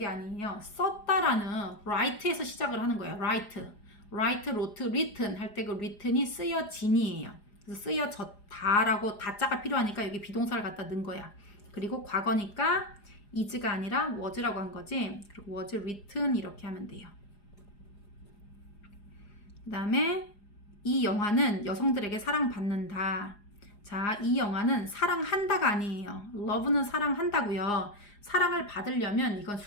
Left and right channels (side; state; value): right; late; 4.9 ms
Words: 아니에요. 썼다라는 write에서 시작을 하는 거예요. write, wrote, written 할 때 그 written이 쓰여진이에요. 그래서 쓰여졌다라고 다자가 필요하니까 여기 비동사를 갖다 넣은 거야. 그리고 과거니까 is가 아니라 was라고 한 거지. 그리고 was written 이렇게 하면 돼요. 그 다음에 이 영화는 여성들에게 사랑받는다. 자, 이 영화는 사랑한다가 아니에요. love는 사랑한다고요. 사랑을 받으려면 이건